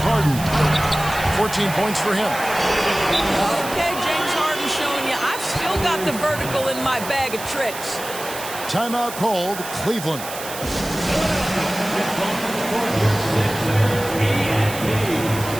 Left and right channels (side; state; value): right; noise; hiss, 10 dB below the sound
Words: 14 points for him. Okay, James Harden showing you I've still got the vertical in my bag of tricks. Timeout called, Cleveland.